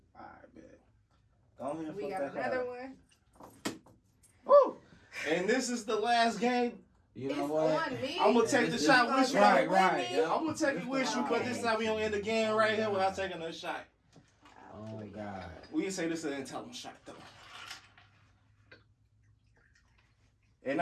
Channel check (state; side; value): identical; both; correlation 1.00